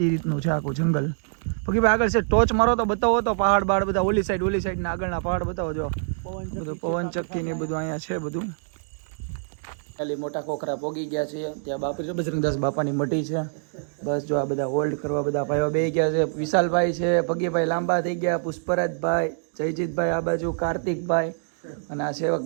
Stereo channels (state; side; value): silent; left; digital silence